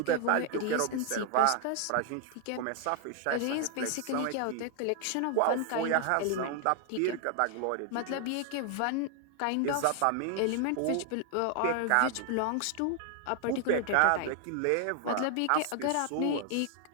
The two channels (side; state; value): both; different; correlation 0.00